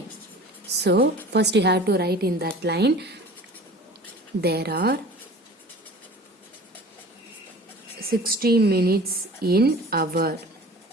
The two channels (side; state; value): both; normal; correlation 0.42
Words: so first you have to write in that line, there are 60 minutes in hour.